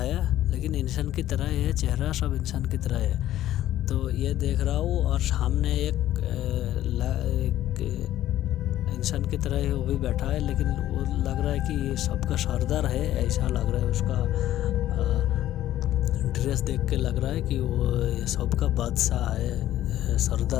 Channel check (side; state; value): right; quieter; 13.2 dB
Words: लेकिन इंसान की तरह है, चेहरा सब इंसान की तरह है। तो ये देख रहा हूँ, और सामने एक इंसान की तरह है, वो भी बैठा है, लेकिन वो लग रहा है कि ये सबका सरदार है, ऐसा लग रहा है। उसका ड्रेस देख के लग रहा है कि वो ये सबका बादशाह है,